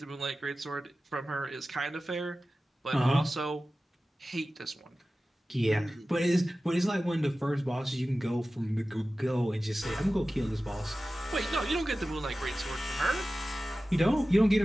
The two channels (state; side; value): normal; both; correlation 0.95